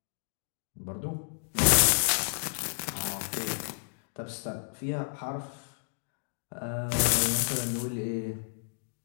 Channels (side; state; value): right; silent; digital silence